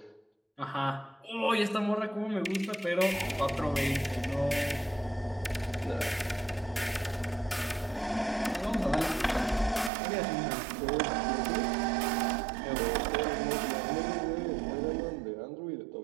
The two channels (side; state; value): left; drops out; at 9.9 s